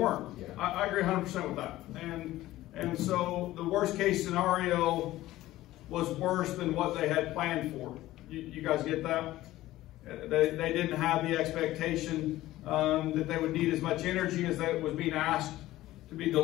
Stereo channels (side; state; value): right; quieter; 15.9 dB